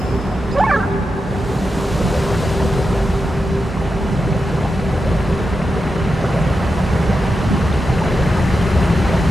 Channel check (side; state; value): both; normal; correlation 0.89